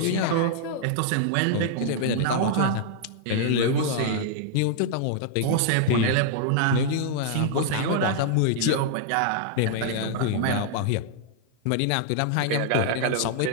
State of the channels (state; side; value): different; both; correlation -0.01